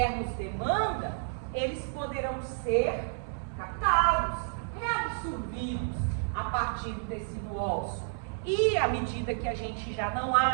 demanda, eles poderão ser captados, reabsorvidos a partir do tecido ósseo. E à medida que a gente já não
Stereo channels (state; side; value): silent; left; digital silence